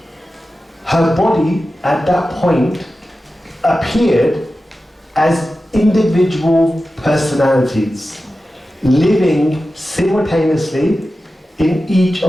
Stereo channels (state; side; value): normal; both; correlation 0.93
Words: her body at that point appeared as individual personalities, living simultaneously in each